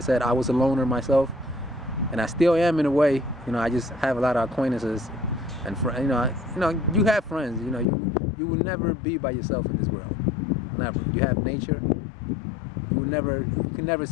said, I was a loner myself, and I still am in a way. You know, I just have a lot of acquaintances. And you have friends. You know, you will never be by yourself in this world. Never. You have nature. You can never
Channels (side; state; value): right; drops out; at 7.9 s